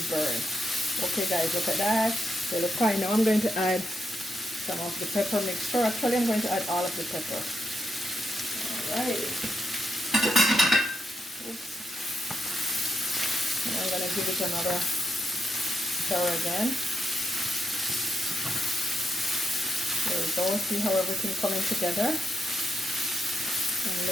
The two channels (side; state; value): both; normal; correlation 0.82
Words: burn. Okay guys, look at that. They look fine. Now I'm going to add some of the pepper mixture. Actually, I'm going to add all of the pepper. Alright. Oops. And I'm going to give it another stir again. There we go. See how everything coming together and